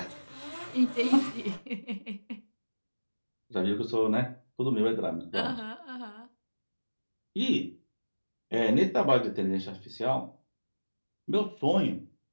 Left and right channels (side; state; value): both; inverted; correlation -1.00